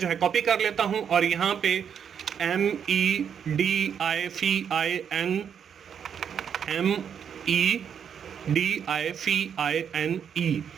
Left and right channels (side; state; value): left; quieter; 7.8 dB